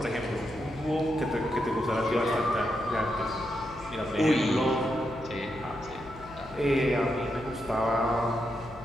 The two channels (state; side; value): noise; left; hum, 18 dB below the sound